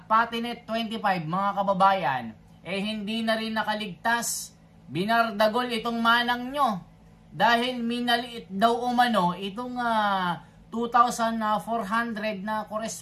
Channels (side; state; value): both; identical; correlation 1.00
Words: pati net 25, mga kababayan, hindi na rin nakaligtas. Binardagol itong manang nyo. Dahil minaliit daw umano itong 2,400 na